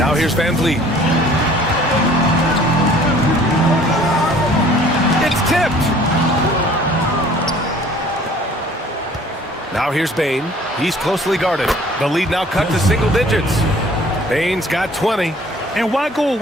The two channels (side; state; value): both; normal; correlation 0.53